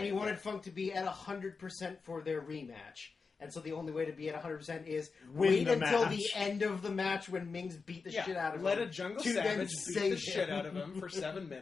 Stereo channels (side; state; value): right; quieter; 4.8 dB